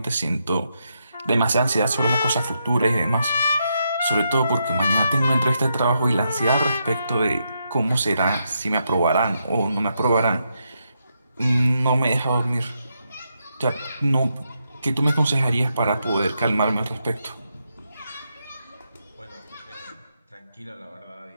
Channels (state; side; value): inverted; both; correlation -0.81